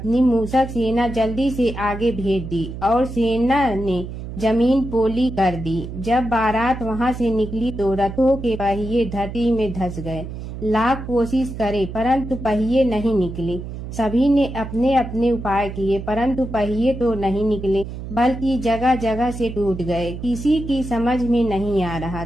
मूसक सेना जल्दी से आगे भेज दी और सेना ने जमीन पोली कर दी। जब बारात वहां से निकली तो रथों के पहिए धरती में धंस गए। लाख कोशिश करे परंतु पहिए नहीं निकले। सभी ने अपने अपने उपाय किए परंतु पहिए तो नहीं निकले, बल्कि जगह जगह से टूट गए। किसी की समझ में नहीं आ रहा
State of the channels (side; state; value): right; noise; hum, 9 dB below the sound